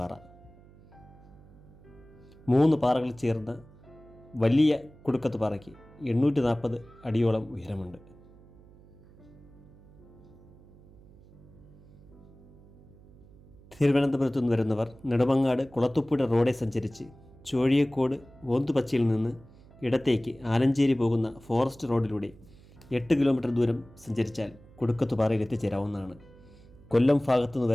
3 പാറകൾ ചേർന്ന വലിയ കുടുക്കത്തുപാറയ്ക്ക് 840 അടിയോളം ഉയരമുണ്ട്. തിരുവനന്തപുരത്തു നിന്ന് വരുന്നവർ നെടുമങ്ങാട് കുളത്തുപ്പുഴ റോഡെ സഞ്ചരിച്ച് ചോഴിയക്കോട് ഓന്തുപച്ചയിൽ നിന്ന് ഇടത്തേക്ക് ആലഞ്ചേരി പോകുന്ന ഫോറസ്റ്റ് റോഡിലൂടെ 8 കിലോമീറ്റർ ദൂരം സഞ്ചരിച്ചാൽ കുടുക്കത്തുപാറയിൽ എത്തിച്ചേരാവുന്നതാണ്. കൊല്ലം ഭാഗത്തു നിന്ന്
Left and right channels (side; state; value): right; noise; hum, 23 dB below the sound